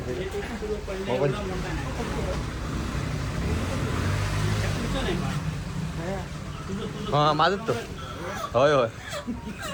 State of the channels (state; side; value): identical; both; correlation 1.00